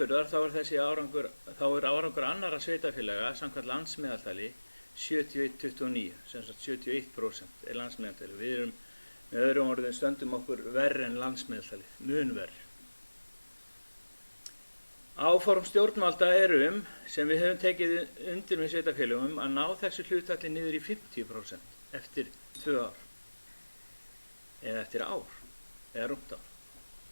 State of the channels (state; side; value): inverted; both; correlation -1.00